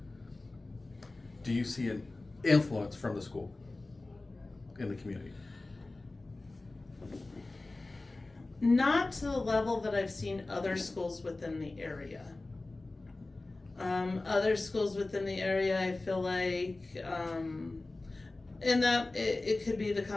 Do you see an influence from the school in the community? Not to the level that I've seen other schools within the area. Other schools within the area, I feel like, and that it could be the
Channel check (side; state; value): right; quieter; 3.1 dB